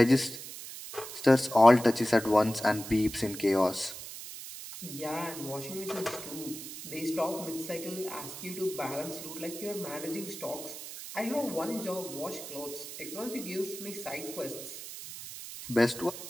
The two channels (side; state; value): right; noise; hiss, 11 dB below the sound